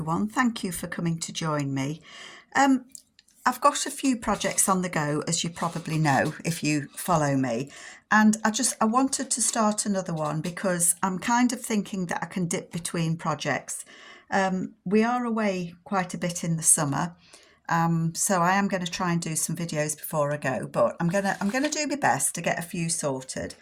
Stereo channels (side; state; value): both; identical; correlation 1.00